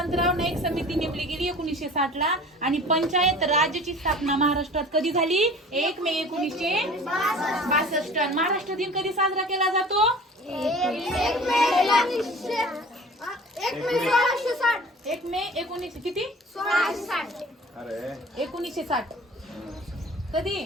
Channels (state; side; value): normal; both; correlation 0.43